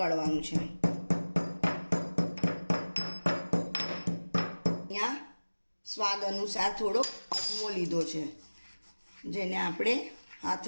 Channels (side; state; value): both; inverted; correlation -1.00